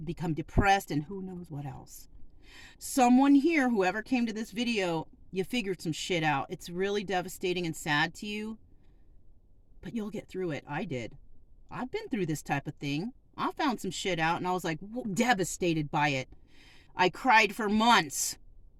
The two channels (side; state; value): both; identical; correlation 1.00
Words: depressed, and who knows what else. Someone here, whoever came to this video, you figured some shit out. It's really devastating and sad to you, but you'll get through it. I did. I've been through this type of thing. I found some shit out, and I was like devastated by it. I cried for months,